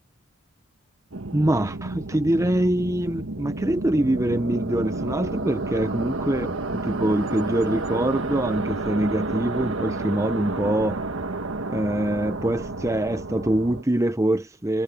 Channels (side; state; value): both; normal; correlation 0.76